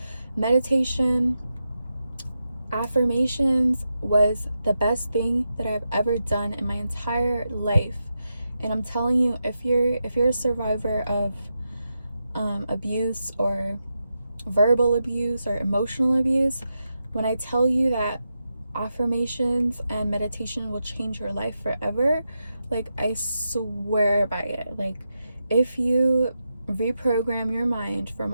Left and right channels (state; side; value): inverted; both; correlation -0.88